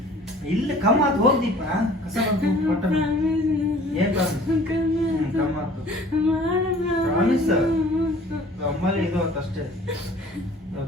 ಇಲ್ಲ ಕಮ್ಮ ಆತು ಹೋಗ್ದೀಪ ಕಸ ಕೊಟ್ಟ ಏನ್ ಕಮ್ಮ ಆತು ಪ್ರಾಮಿಸ್ ನಮ್ಮಲ್ಲಿ ಇದು ಆತು ಅಷ್ಟೇ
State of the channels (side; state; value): both; normal; correlation 0.50